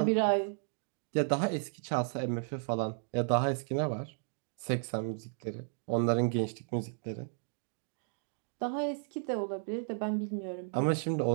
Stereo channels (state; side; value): silent; left; 55 dB below the other